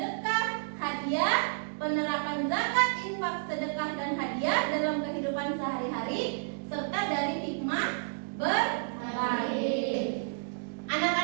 hadiah, penerapan zakat, infak, sedekah, dan hadiah dalam kehidupan sehari-hari, serta dari hikmah berbagi.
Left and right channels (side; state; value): left; silent; digital silence